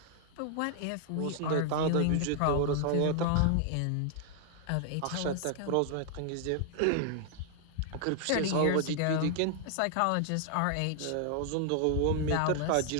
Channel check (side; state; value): both; different; correlation 0.00